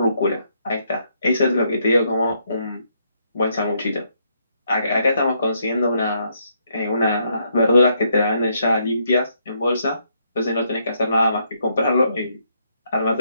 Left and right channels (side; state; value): both; inverted; correlation -0.75